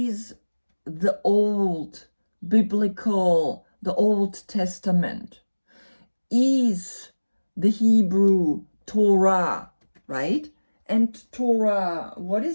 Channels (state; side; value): inverted; both; correlation -1.00